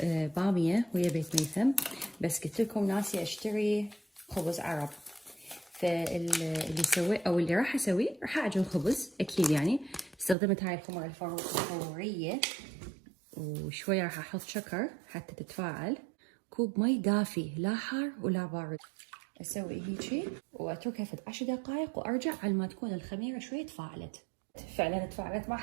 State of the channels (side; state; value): left; drops out; at 10.4 s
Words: باميه ويا بيت ميثم، بس قلت لكم ناسي اشتري خبز عرب. فاللي سوي او اللي راح اسويه، راح اعجن خبز اكيد يعني. استخدمت هاي الخمر الفوريه، وشويه راح احط شكر حتى تتفاعل. كوب مي دافي، لا حار ولا بارد. اسوي هيجي واتركها في 10 دقائق وارجع على ما تكون الخميره شويه تفاعلت. فعلا تفاعلت، ما